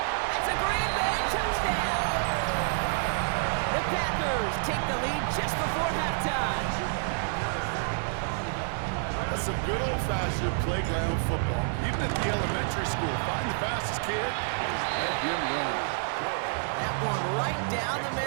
That's a Green Bay touchdown. The Packers take the lead just before halftime. That's some good old-fashioned playground football. Even at the elementary school, find the fastest kid and just let him run. That one right down the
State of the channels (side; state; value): left; silent; 59 dB below the other